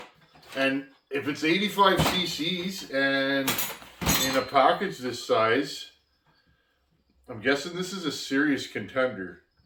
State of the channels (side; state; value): both; identical; correlation 1.00